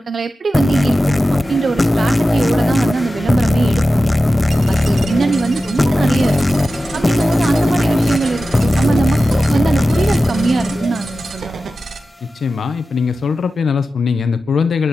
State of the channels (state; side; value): normal; both; correlation 0.93